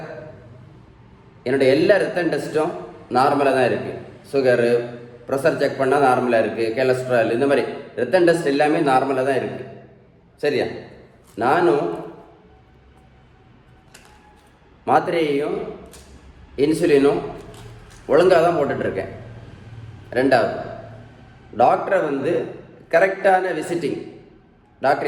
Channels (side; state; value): both; identical; correlation 1.00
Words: என்னுடைய எல்லா ரத்த டெஸ்ட்டும் நார்மலாக தான் இருக்குது, சுகரு ப்ரெஷர் செக் பண்ணால் நார்மலாக இருக்குது, கொலஸ்ட்ரால் இந்த மாதிரி ரத்த டெஸ்ட் எல்லாமே நார்மலாக தான் இருக்குது, சரியா? நானும் மாத்திரையையும் இன்சுலினும் ஒழுங்காக தான் போட்டுட்ருக்கேன். ரெண்டாவது, டாக்டரை கரெக்டான விசிட்டிங்,